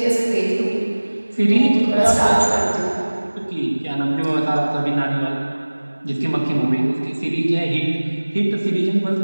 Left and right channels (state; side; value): inverted; both; correlation -1.00